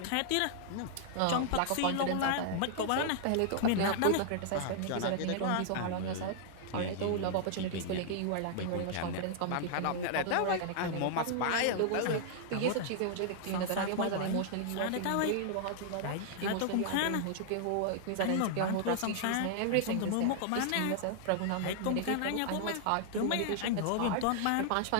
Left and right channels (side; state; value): both; different; correlation -0.01